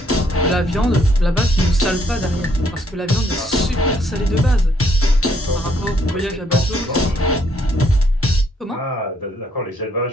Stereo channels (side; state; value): both; normal; correlation 0.69